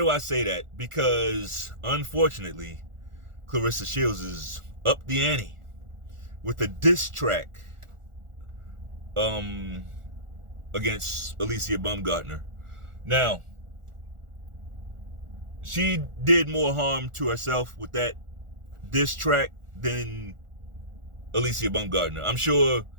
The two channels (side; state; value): left; late; 1.4 ms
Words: I say that? Because, unfortunately, Clarissa Shields is up the ante with a diss track against Alycia Baumgardner. Now, she did more harm to herself with that diss track than Alycia Baumgardner. I'm sure